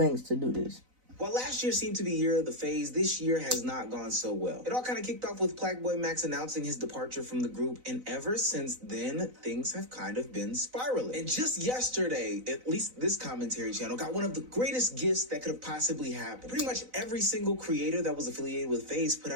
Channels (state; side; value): late; left; 4.0 ms